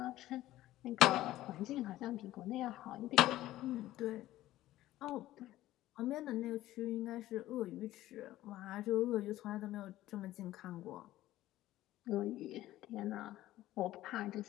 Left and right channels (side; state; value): right; quieter; 15.1 dB